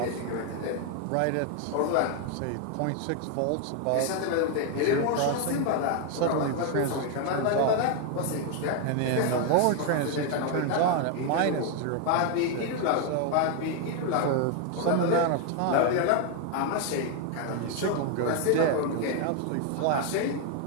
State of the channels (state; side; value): different; both; correlation 0.01